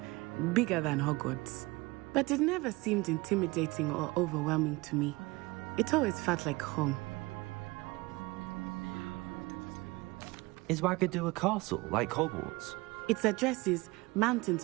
bigger than Hogwarts. But it never seemed intimidating or overwhelming to me. It always felt like home. Is Wagadu a castle, like Hogwarts? Its address is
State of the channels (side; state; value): left; quieter; 23.0 dB